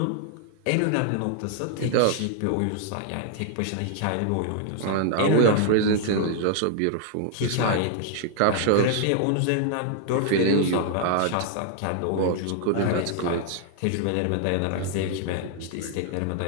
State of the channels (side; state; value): both; different; correlation 0.00